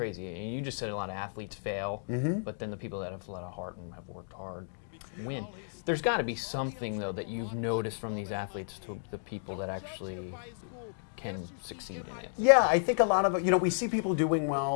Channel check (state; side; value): silent; right; digital silence